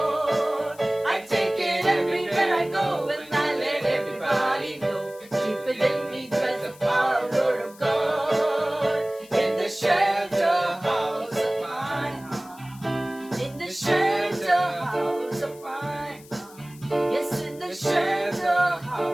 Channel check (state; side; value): noise; left; hiss, 23 dB below the sound